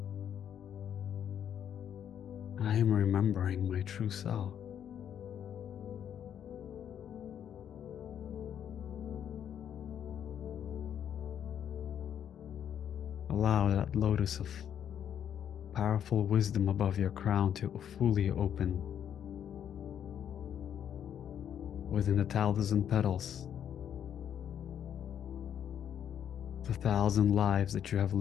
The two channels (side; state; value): right; quieter; 9.3 dB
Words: I am remembering my true self. Allow that lotus of powerful wisdom above your crown to fully open within the 1,000 petals, the 1,000 lives that you have